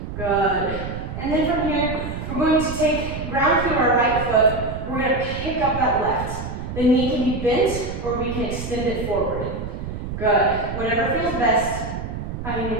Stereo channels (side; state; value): right; noise; rumble, 7 dB below the sound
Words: Good. And then from here, we're going to take ground through our right foot. We're going to pick up that left. The knee can be bent or we can extend it forward. Good. Whatever feels best. I'm going